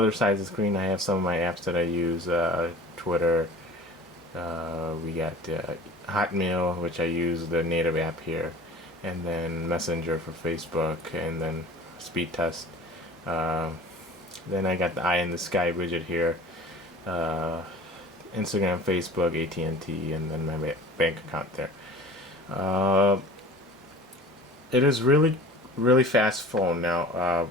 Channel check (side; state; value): both; normal; correlation 0.43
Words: side of the screen, I have some of my apps that I use. Twitter. We got Hotmail, which I use the native app here, and then Messenger for Facebook, and then Speed Test. Then I got the Eye in the Sky widget here. Instagram, Facebook, AT&T, and then my bank account there. It is really fast phone. Now